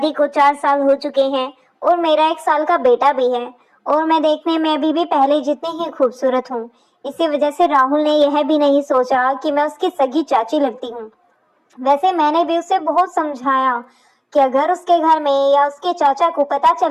को 4 साल हो चुके हैं और मेरा 1 साल का बेटा भी है, और मैं देखने में अभी भी पहले जितनी ही खूबसूरत हूँ। इसी वजह से राहुल ने यह भी नहीं सोचा कि मैं उसकी सगी चाची लगती हूँ। वैसे मैंने भी उसे बहुत समझाया कि अगर उसके घर में या उसके चाचा को पता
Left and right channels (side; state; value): both; identical; correlation 1.00